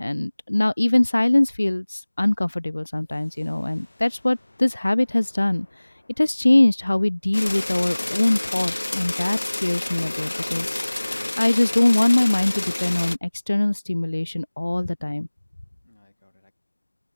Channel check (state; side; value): inverted; both; correlation -1.00